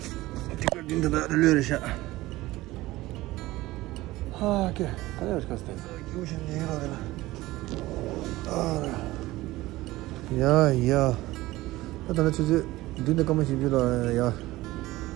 the relation. Okay, yeah. I don't know. Didn't come and yeah.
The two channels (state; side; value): quieter; left; 18.1 dB